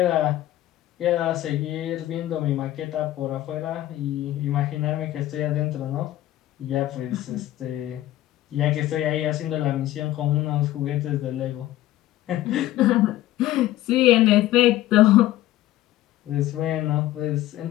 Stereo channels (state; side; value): quieter; right; 14.6 dB